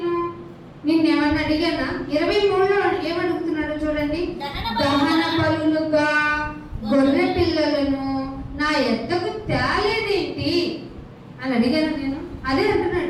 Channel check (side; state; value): both; identical; correlation 1.00